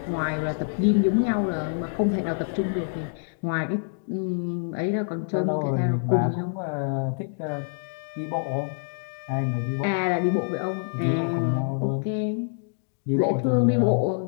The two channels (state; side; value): silent; right; digital silence